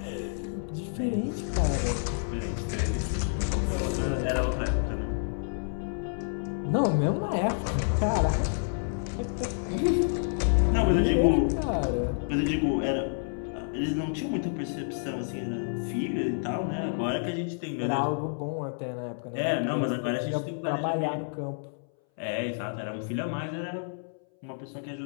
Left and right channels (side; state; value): right; silent; 59 dB below the other